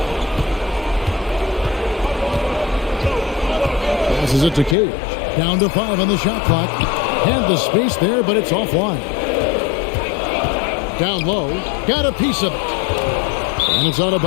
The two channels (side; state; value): right; drops out; at 4.8 s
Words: Passes it to Cage. Down to 5 on the shot clock. Had the space there, but it's offline. Down low. Got a piece of it. And it's out of